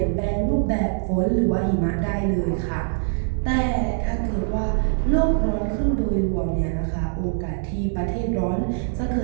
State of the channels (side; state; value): left; silent; digital silence